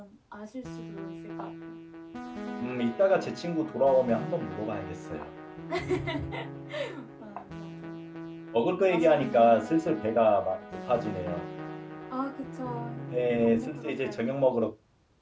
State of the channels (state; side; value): identical; both; correlation 1.00